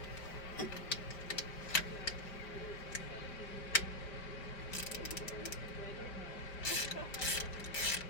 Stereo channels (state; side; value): late; right; 4.9 ms